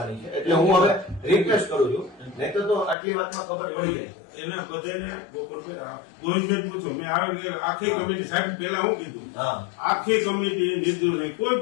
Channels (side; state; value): right; drops out; at 3.0 s